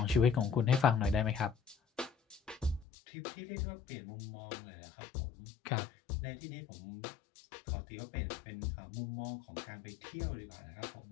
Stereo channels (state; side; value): drops out; right; at 2.9 s